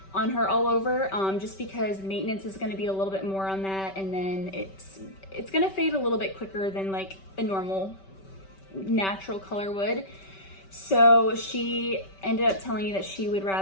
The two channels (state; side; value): late; right; 5.2 ms